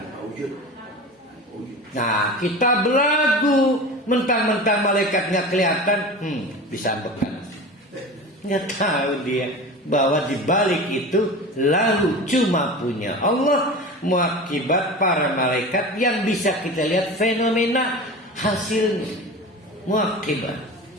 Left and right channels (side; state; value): both; normal; correlation 0.32